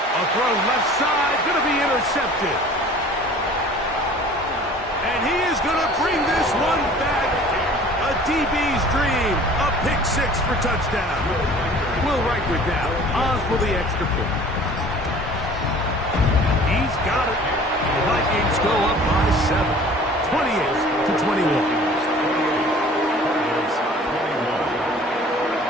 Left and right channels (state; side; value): normal; both; correlation 0.48